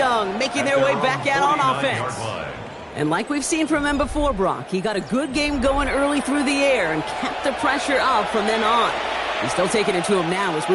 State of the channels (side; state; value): both; identical; correlation 1.00